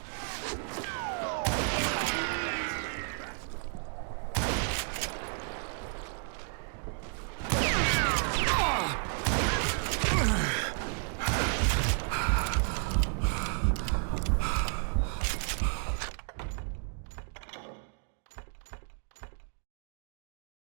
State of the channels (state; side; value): silent; left; 56 dB below the other